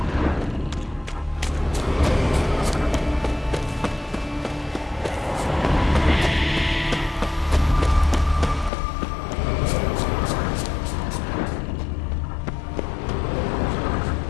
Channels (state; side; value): drops out; right; at 8.7 s